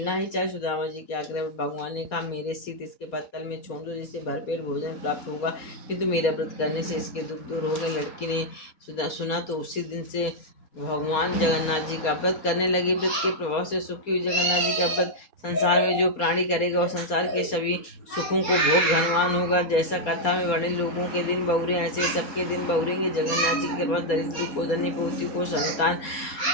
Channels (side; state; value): right; late; 4.3 ms